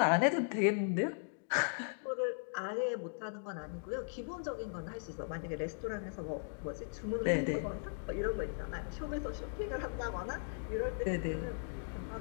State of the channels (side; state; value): right; silent; digital silence